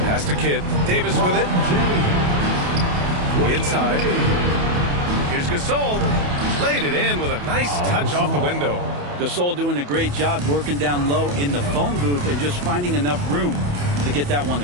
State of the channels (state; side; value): late; left; 28 ms